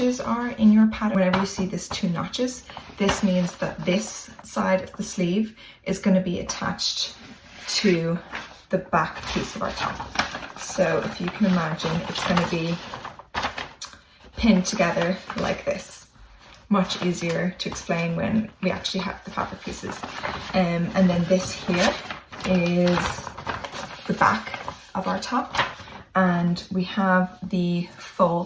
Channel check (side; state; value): both; identical; correlation 1.00